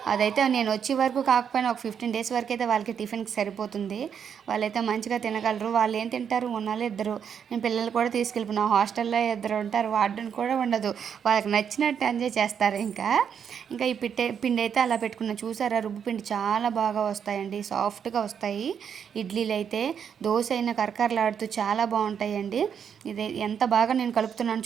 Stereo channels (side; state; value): left; quieter; 7.7 dB